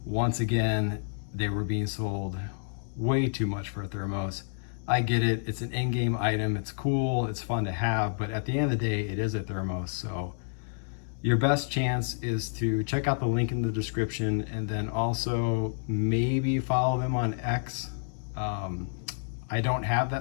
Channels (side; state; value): right; silent; digital silence